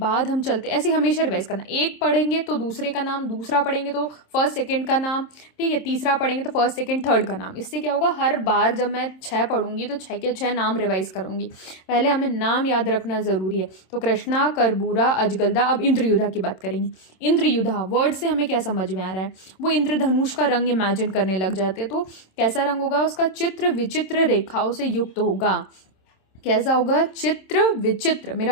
हम चलते, ऐसे हमेशा रिवाइज करना, एक पढ़ेंगे तो दूसरे का नाम, दूसरा पढ़ेंगे तो फर्स्ट सेकंड का नाम, ठीक है, तीसरा पढ़ेंगे तो फर्स्ट सेकंड थर्ड का नाम। इससे क्या होगा, हर बार जब मैं 6 पढ़ूंगी तो 6 के 6 नाम रिवाइज करूंगी। पहले हमें नाम याद रखना जरूरी है। तो कृष्णा, कर्बूरा, अजगलदा। अब इंद्रयुधा की बात करेंगे। इंद्रयुधा वर्ड से हमें क्या समझ में आ रहा है, वो इंद्रधनुष का रंग इमेजिन करने लग जाते, तो कैसा रंग होगा उसका, चित्र विचित्र रेखाओं से युक्त होगा। कैसा होगा, चित्र विचित्र,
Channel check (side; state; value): right; late; 27 ms